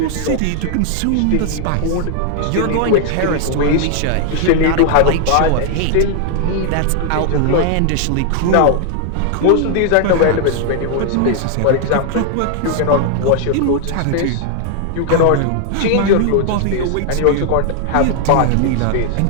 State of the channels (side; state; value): both; different; correlation 0.00